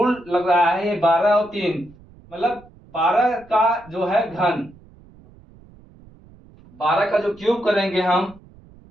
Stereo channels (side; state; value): right; noise; rumble, 25 dB below the sound